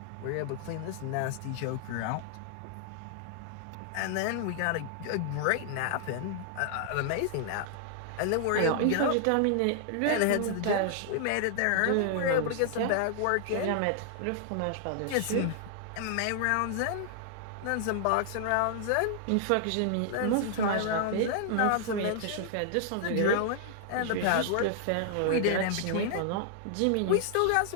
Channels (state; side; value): different; both; correlation -0.01